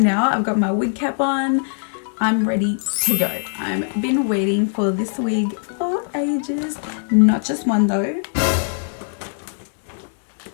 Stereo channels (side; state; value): right; silent; digital silence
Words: now. I've got my wig cap on. I'm ready to go. I've been waiting for this wig for ages. Not just one though.